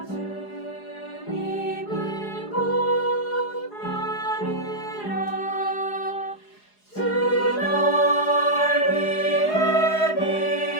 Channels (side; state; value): right; late; 4.8 ms